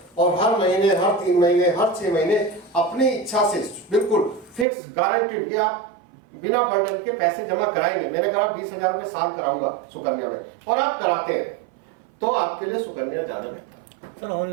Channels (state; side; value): drops out; left; at 4.7 s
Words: और हर महीने, हर 3 महीने, हर 6 महीने अपनी इच्छा से बिल्कुल फिक्स गारंटीड कि आप बिना बर्डन के पैसे जमा कराएंगे, मैंने कहा 20,000 रुपए साल कराऊंगा सुकन्या में, और आप कराते हैं, तो आपके लिए सुकन्या ज्यादा बेहतर है। सर